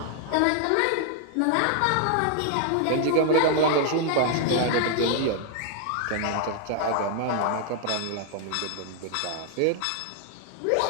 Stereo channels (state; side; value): different; both; correlation 0.00